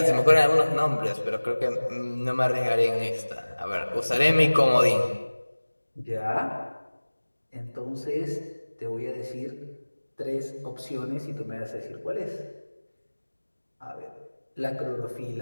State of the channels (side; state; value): both; inverted; correlation -1.00